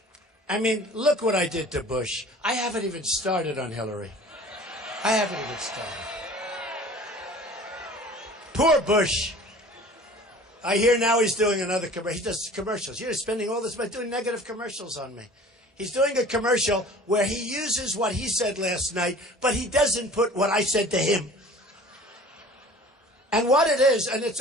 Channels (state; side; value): normal; both; correlation 0.45